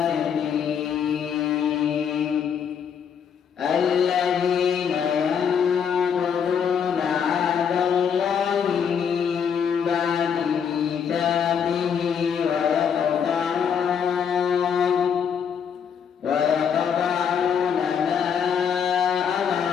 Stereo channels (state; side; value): quieter; right; 7.4 dB